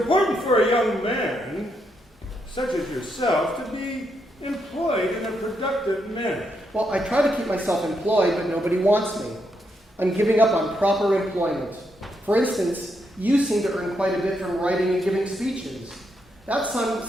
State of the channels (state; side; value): normal; both; correlation 0.80